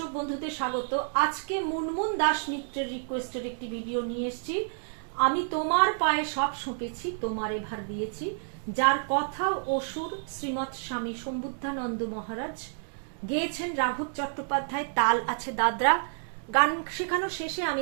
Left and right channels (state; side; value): silent; left; digital silence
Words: বন্ধুদের স্বাগত। আজকে মুনমুন দাস মিত্রের রিকোয়েস্টের একটি ভিডিও নিয়ে এসেছি। আমি তোমার পায়ে সব সঁপেছি, তোমার এভার দিয়েছি, যার কথা ও সুর শ্রীমৎ স্বামী সম্বুদ্ধানন্দ মহারাজ, গেয়েছেন রাঘব চট্টোপাধ্যায়, তাল আছে দাদরা। গান শেখানোর শেষে